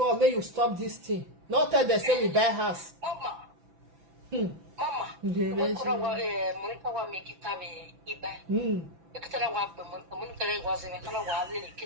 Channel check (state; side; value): late; left; 6.0 ms